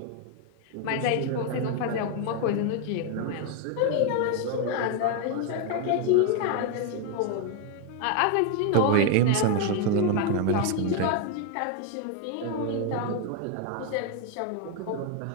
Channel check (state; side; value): different; both; correlation 0.01